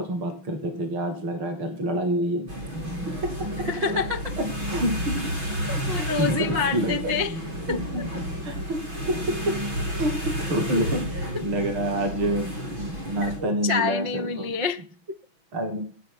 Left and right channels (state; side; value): late; left; 6.1 ms